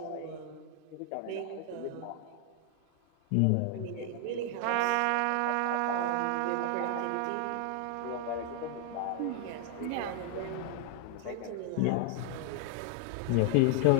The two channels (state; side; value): different; both; correlation 0.00